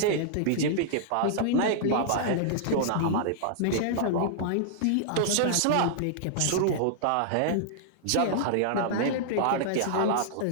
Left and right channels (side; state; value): both; different; correlation -0.01